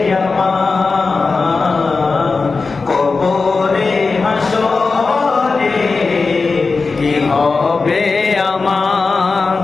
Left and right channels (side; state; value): right; quieter; 4.2 dB